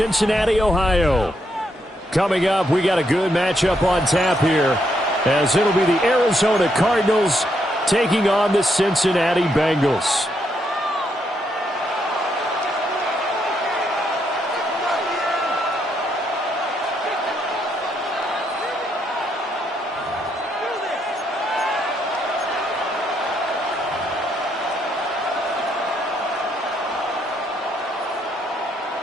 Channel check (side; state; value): both; normal; correlation 0.76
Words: Ohio. Coming up, we got a good matchup on tap here, as it'll be the Arizona Cardinals taking on the Cincinnati Bengals.